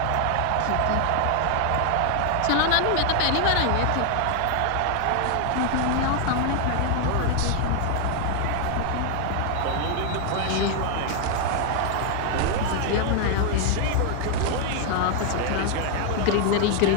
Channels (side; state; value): both; different; correlation 0.00